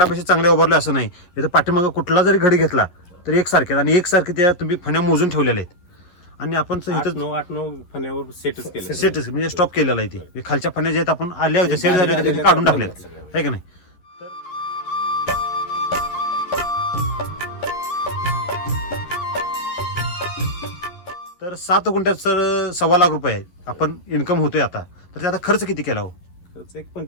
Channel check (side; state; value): right; late; 11 ms